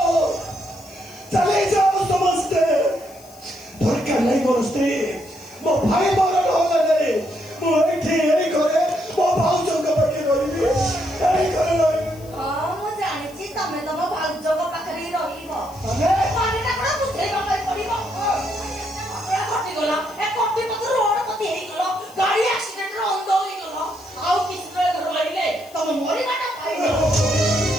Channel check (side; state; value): left; noise; hiss, 23 dB below the sound